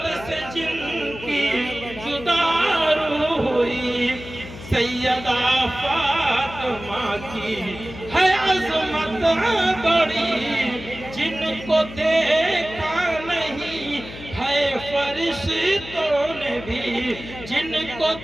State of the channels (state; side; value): noise; left; hum, 14 dB below the sound